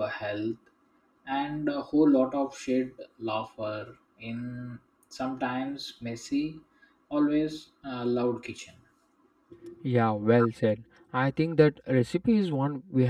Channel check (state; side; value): identical; both; correlation 1.00